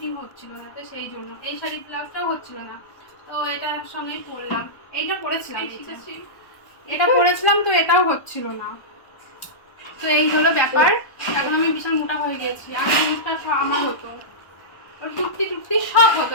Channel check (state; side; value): late; right; 1.1 ms